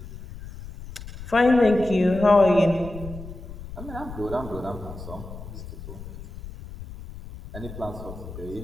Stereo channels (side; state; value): left; noise; rumble, 13 dB below the sound